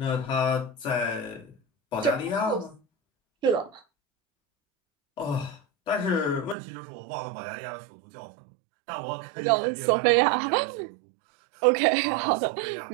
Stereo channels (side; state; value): left; drops out; at 6.6 s